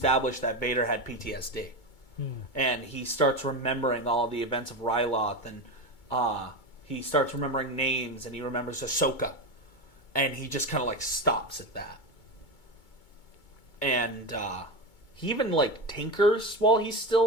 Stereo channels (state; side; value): late; right; 2.2 ms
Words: that Vader had PTSD. And he starts remembering all the events of Ryloth, and he starts remembering names, and he remembers Ahsoka. And he just kind of stops at that. And he even tinkers while he's